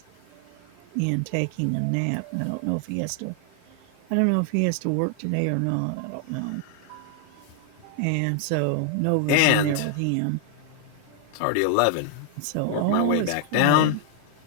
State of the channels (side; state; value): both; different; correlation 0.00